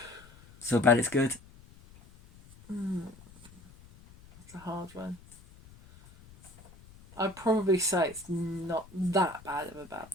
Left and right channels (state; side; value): noise; left; rumble, 23 dB below the sound